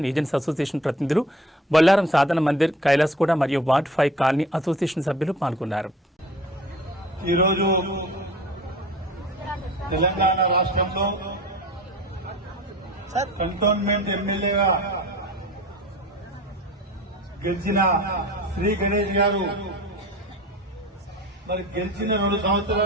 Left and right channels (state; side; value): normal; both; correlation 0.42